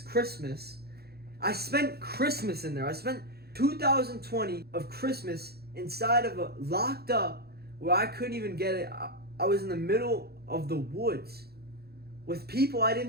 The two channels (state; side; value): late; left; 0.46 ms